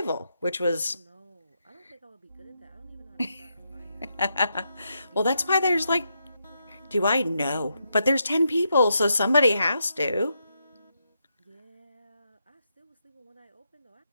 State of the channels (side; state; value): both; inverted; correlation -0.82